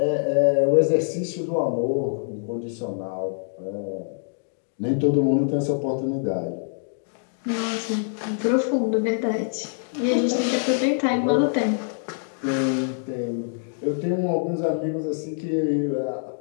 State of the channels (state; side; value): silent; right; digital silence